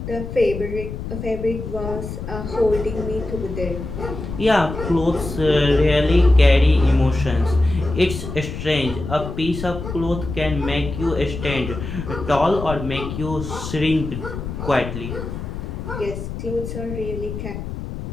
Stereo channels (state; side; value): noise; left; rumble, 7 dB below the sound